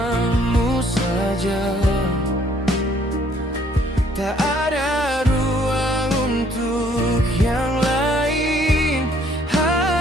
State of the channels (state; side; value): normal; both; correlation 0.63